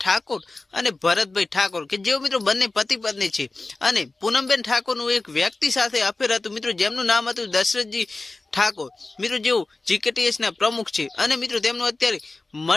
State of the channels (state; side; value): quieter; right; 3.3 dB